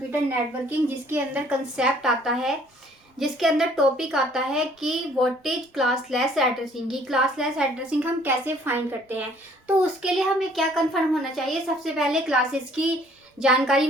नेटवर्किंग, जिसके अंदर कंसेप्ट आता है, जिसके अंदर टॉपिक आता है कि व्हाट इज क्लासलेस एड्रेसिंग। की क्लासलेस एड्रेसिंग हम कैसे फाइंड करते हैं। तो उसके लिए हमें क्या कंफर्म होना चाहिए। सबसे पहले क्लासेस की जानकारी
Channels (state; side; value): normal; both; correlation 0.59